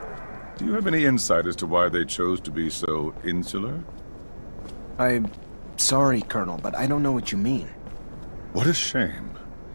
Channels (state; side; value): inverted; both; correlation -1.00